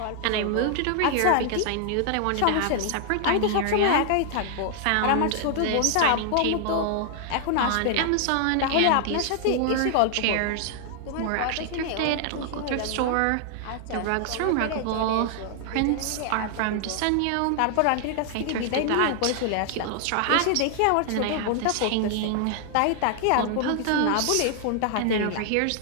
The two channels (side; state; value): both; different; correlation 0.00